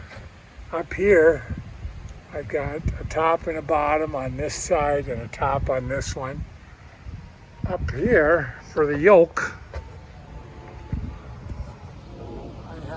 Up here, I've got a top and a bottom on this side and a top on this one. Up here, for the yoke, I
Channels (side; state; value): both; identical; correlation 1.00